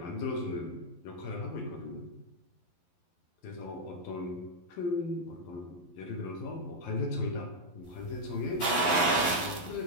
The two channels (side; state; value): right; late; 11 ms